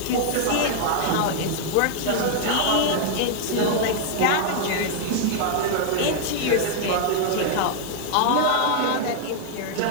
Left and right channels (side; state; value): both; different; correlation 0.00